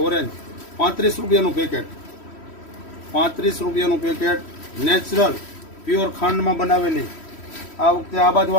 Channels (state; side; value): late; right; 3.1 ms